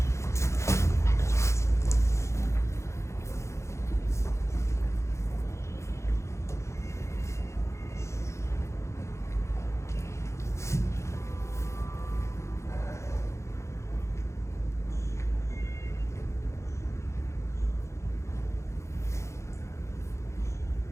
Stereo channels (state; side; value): late; right; 0.14 ms